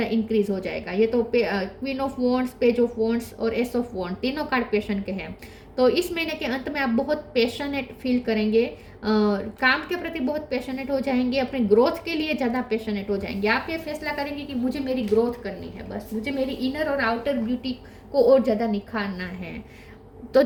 इंक्रीज हो जाएगा। ये तो queen of wands, page of wands और एस ऑफ वॉन्ड तीनों कार्ड पैशन के हैं। तो इस महीने के अंत में आप बहुत पैशनेट फील करेंगे, काम के प्रति बहुत पैशनेट हो जाएंगे, अपने ग्रोथ के लिए ज़्यादा पैशनेट हो जाएंगे। आप ये फैसला करेंगे कि मुझे मेरी ग्रोथ करनी है, बस मुझे मेरी इनर और आउटर ब्यूटी को और ज़्यादा निखारना है। तो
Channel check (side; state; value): both; identical; correlation 1.00